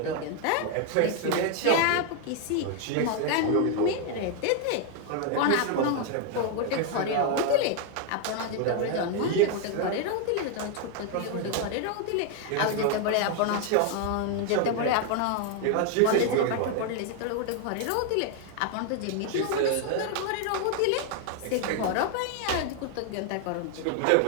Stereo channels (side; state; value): both; different; correlation 0.00